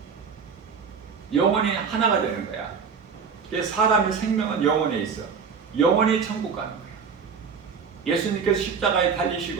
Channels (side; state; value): left; quieter; 6.0 dB